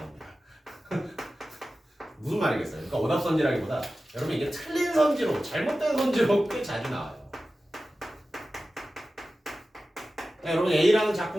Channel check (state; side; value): normal; both; correlation 0.94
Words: 무슨 말이겠어요? 그러니까 오답선지라기보다 여러분 이게 틀린 선지로 잘못된 선지로 꽤 자주 나와요. 여러분 A라는